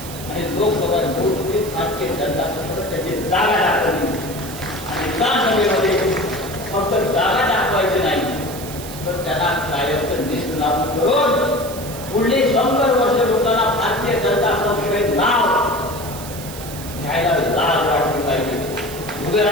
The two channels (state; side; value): noise; right; hiss, 13 dB below the sound